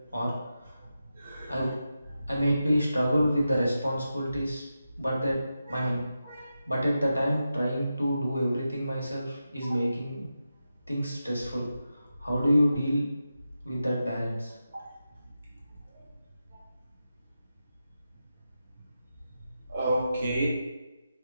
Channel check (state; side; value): inverted; both; correlation -0.90